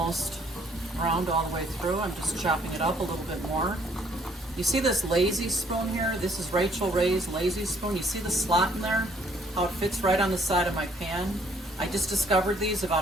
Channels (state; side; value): normal; both; correlation 0.63